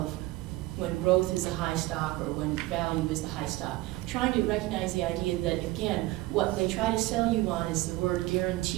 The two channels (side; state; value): left; quieter; 18.7 dB